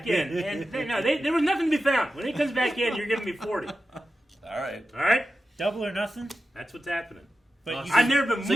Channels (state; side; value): normal; both; correlation 0.92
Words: in, and there was nothing to be found. When he comes back in, you're giving me 40. All right. All right? Double or nothing. That's what's happening. But I've never been So